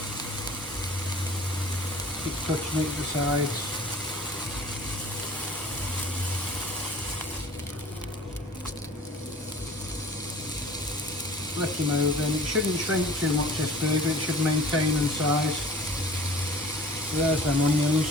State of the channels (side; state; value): both; normal; correlation 0.46